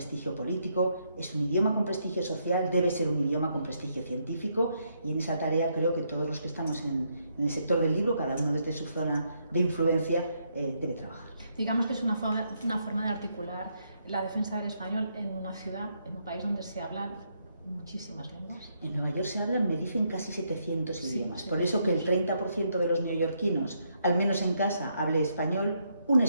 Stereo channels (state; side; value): inverted; both; correlation -0.76